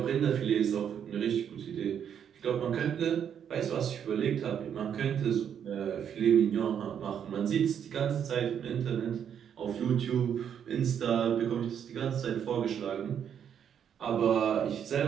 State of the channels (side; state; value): left; quieter; 8.5 dB